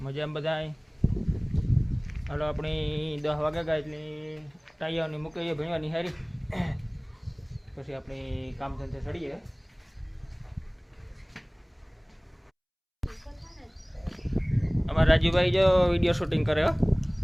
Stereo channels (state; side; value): identical; both; correlation 1.00